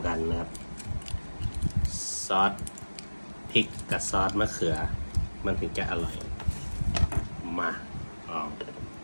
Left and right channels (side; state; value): both; inverted; correlation -1.00